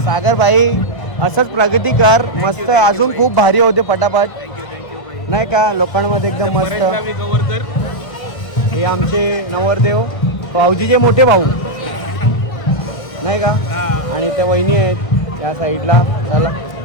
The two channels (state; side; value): late; right; 1.5 ms